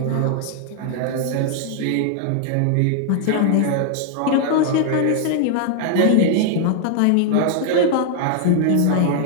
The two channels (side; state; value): both; different; correlation 0.00